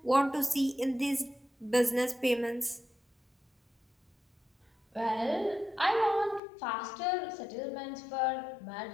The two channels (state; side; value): drops out; right; at 6.4 s